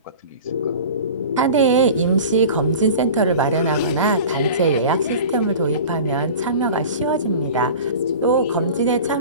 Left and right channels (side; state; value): both; inverted; correlation -0.37